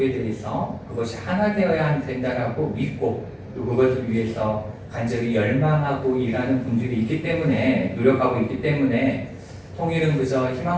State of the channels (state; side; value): identical; both; correlation 1.00